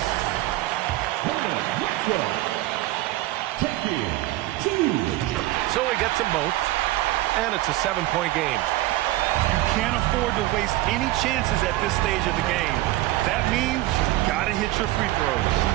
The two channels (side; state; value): left; quieter; 17.2 dB